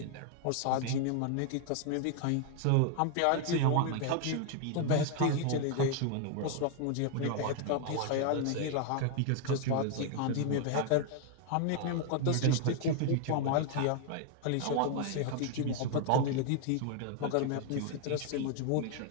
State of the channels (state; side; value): different; both; correlation 0.00